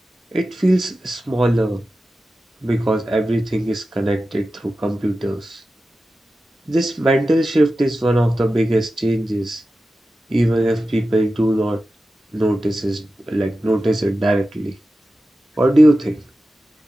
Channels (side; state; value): both; normal; correlation 0.94